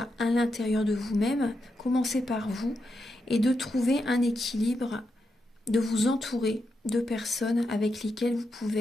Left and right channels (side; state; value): both; normal; correlation 0.85